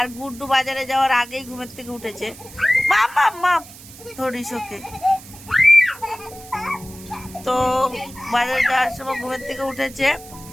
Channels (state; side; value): noise; right; hiss, 18 dB below the sound